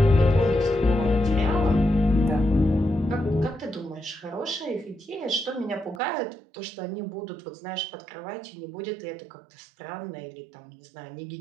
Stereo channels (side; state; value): left; drops out; at 6.0 s